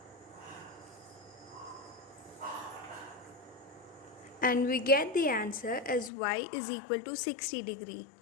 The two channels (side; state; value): right; drops out; at 6.1 s